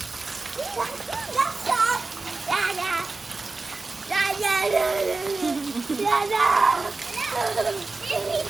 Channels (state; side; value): quieter; left; 3.7 dB